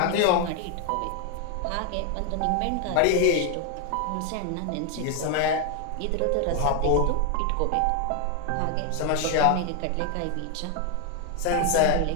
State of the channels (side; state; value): both; different; correlation 0.01